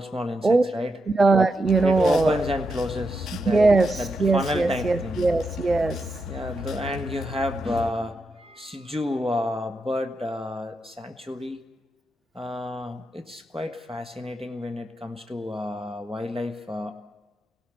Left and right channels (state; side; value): normal; both; correlation 0.85